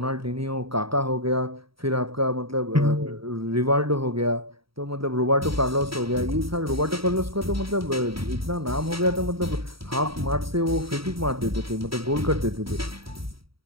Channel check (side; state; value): left; late; 0.75 ms